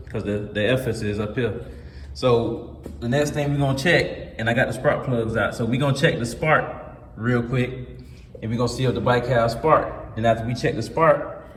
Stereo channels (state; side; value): identical; both; correlation 1.00